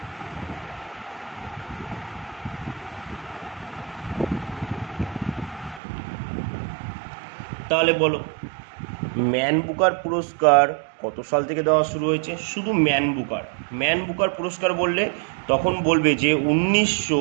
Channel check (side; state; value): left; drops out; at 5.8 s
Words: তাহলে বলো ম্যান বুকার পুরস্কার কত সাল থেকে দেওয়া শুরু হয়েছে? শুধু ম্যান বুকার পুরস্কার বললে তখন বলবে যে